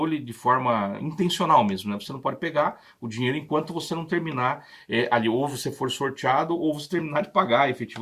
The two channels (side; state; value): both; identical; correlation 1.00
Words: de forma intencional mesmo, né? Você não pode pegar o dinheiro enquanto você não terminar ali, ou você for sorteado, ou você terminar de pagar